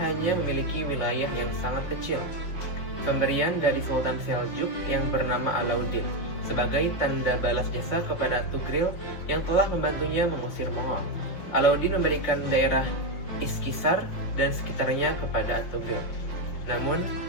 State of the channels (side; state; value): right; late; 5.7 ms